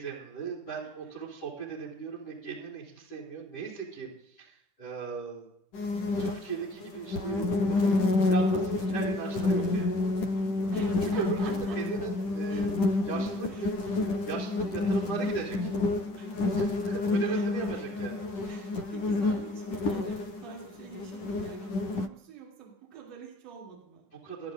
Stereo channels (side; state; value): right; late; 10 ms